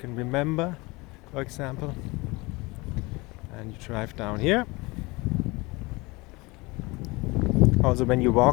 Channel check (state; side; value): quieter; right; 24.1 dB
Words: remember, for example. And you drive down here. Also, when you